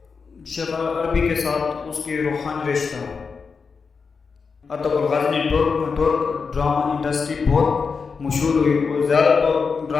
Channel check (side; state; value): right; quieter; 5.2 dB